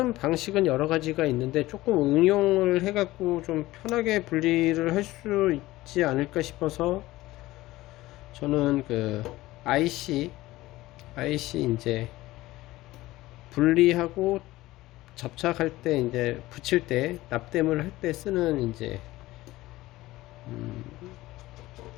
방식은 여러 가지가 있는데 조금 응용을 해갖고 좀 편하게 분리를 할 수 있지 않을까 싶어서 저는 그 IC 이제 분리하고 접착할 때 이제 붙일 때 납땜을 할 때 쓰는 이제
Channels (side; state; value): right; quieter; 17.7 dB